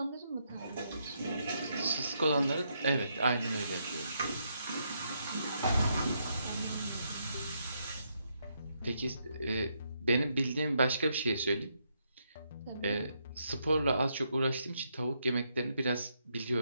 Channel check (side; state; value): both; inverted; correlation -0.78